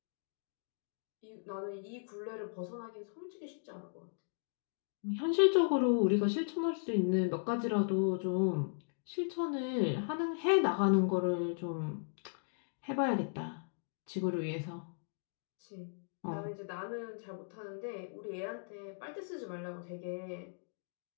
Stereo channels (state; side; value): silent; right; digital silence